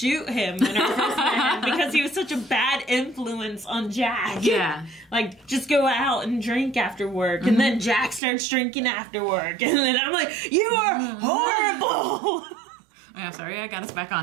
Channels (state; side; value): drops out; left; at 8.2 s